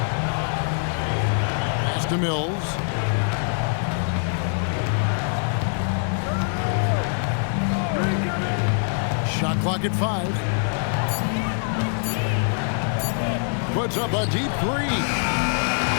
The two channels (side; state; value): right; silent; 63 dB below the other